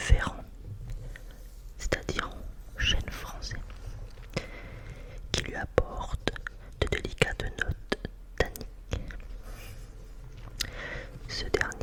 c'est-à-dire en chêne français, qui lui apporte de délicates notes tanniques. Ce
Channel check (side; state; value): both; identical; correlation 1.00